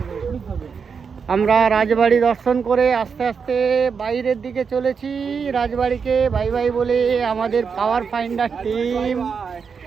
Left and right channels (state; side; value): quieter; left; 6.0 dB